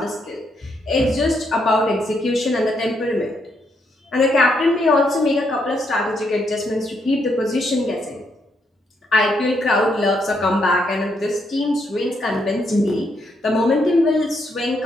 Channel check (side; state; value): both; normal; correlation 0.77